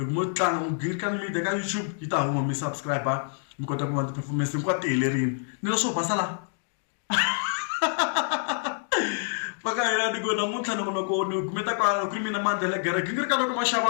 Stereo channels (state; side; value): silent; right; digital silence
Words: mo tlanga mo Gingirikani Media ka YouTube yi ta huma mi subscribe mi kota ku vona ti-performance hinkwato ti helerile ni leswo basa la paka hina ni ku namuntlha ni kumeta ku ri mina Mandla Gingirikani loko ma